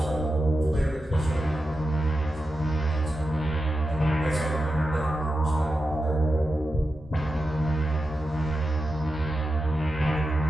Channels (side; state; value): both; normal; correlation 0.90